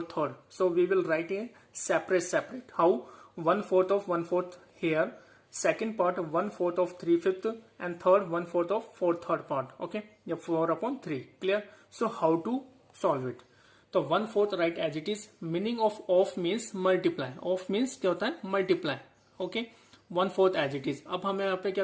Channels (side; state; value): both; identical; correlation 1.00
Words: So we will write a separate. How? 1/4 of 1/4 here, second part 1/4 of 3/5 and third 1/4 of 4/3 part. Okay, yeah, 4/3. Clear? So how to solve it? तो 1/4 right as it is. Meaning of means multiply. Of means क्या होता है? Multiply. Okay, 1/4 as it is. अब हमें यहाँ पे